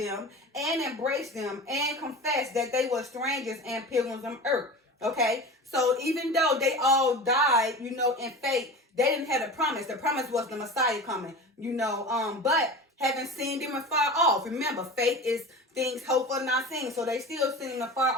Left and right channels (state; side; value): normal; both; correlation 0.32